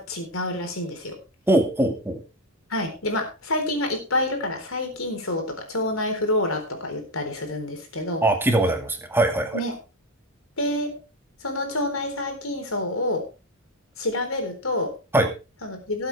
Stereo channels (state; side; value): normal; both; correlation 0.15